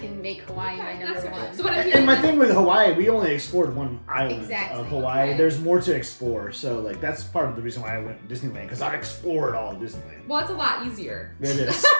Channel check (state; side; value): inverted; both; correlation -1.00